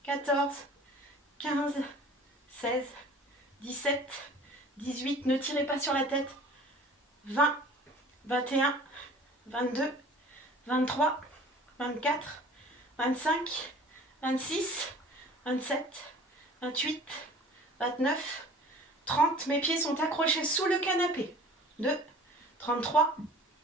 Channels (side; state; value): both; normal; correlation 0.46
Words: 14, 15, 16, 17, 18, ne tirez pas sur la tête, 20, 21, 22, 23, 24, 25, 26, 27, 28, 29, 30, mes pieds sont accrochés sous le canapé, 2, 33,